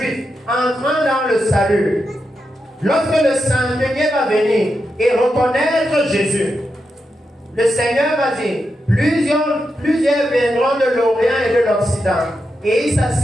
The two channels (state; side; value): normal; both; correlation 0.86